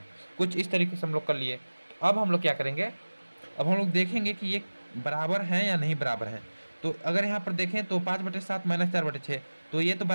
कुछ इस तरीके से हम लोग कर लिए। तो अब हम लोग क्या करेंगे, अब हम लोग देखेंगे कि ये बराबर हैं या नहीं बराबर हैं। तो अगर यहाँ पर देखें तो 5/7 -4/6, तो ये तो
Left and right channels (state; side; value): inverted; both; correlation -1.00